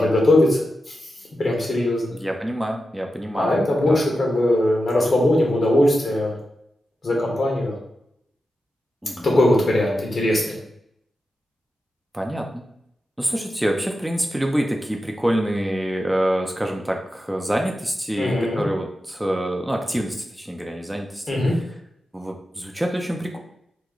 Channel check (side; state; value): both; normal; correlation 0.90